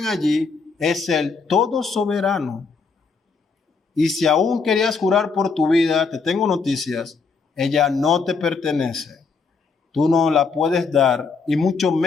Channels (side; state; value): right; quieter; 4.8 dB